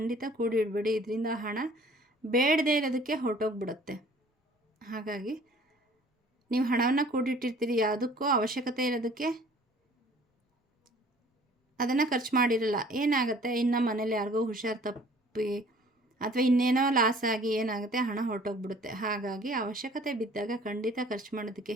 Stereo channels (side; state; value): both; normal; correlation 0.52